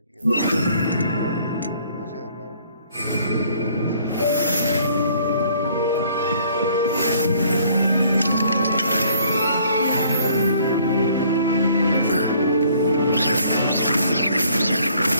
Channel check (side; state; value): both; inverted; correlation -0.60